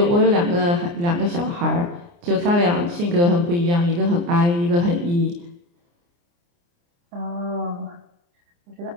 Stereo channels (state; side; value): late; left; 29 ms